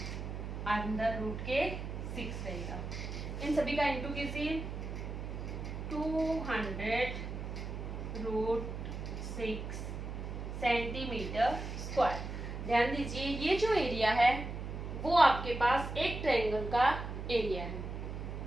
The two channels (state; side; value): noise; right; hum, 6 dB below the sound